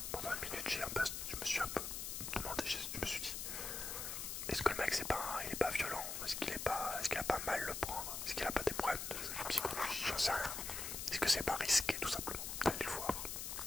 pendant une minute, je me suis un peu demandé, je me suis dit, est-ce que le mec il est pas violent? Est-ce qu'il a pas mal le prendre? Est-ce qu'il a pas des problèmes de psychologie? J'en sais rien. Est-ce que c'est pas risqué tout simplement d'aller le voir?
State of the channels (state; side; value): noise; left; hiss, 4 dB below the sound